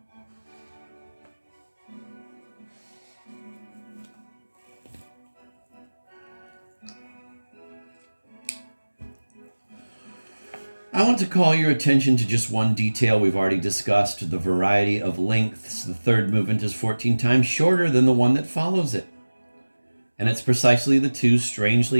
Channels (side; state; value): both; inverted; correlation -1.00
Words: I want to call your attention to just one detail we've already discussed, the variety of lengths. The third movement is 14 times shorter than the one that follows it. And it's precisely the 2